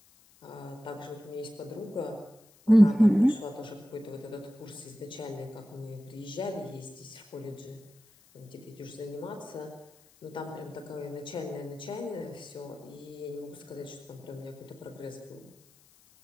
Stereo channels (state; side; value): noise; left; hiss, 28 dB below the sound